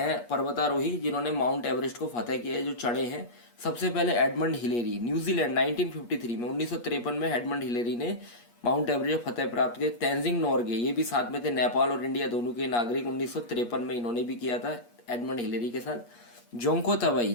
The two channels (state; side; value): late; right; 8.4 ms